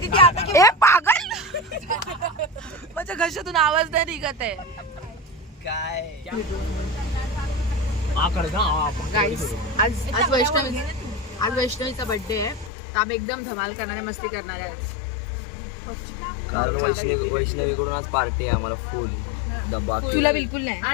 ती आता ए पागल माझ्या घशातून आवाज नाही निघत आहे. काय गाईस आज वैष्णवीचा बर्थडे आहे. तर आम्ही एकदम धमाल करणारे मस्ती करणार आहे. वैष्णवीकडून आज पार्टी आहे आम्हाला फुल डब्बा. तुला बिलकुल नाही.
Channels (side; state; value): right; drops out; at 12.7 s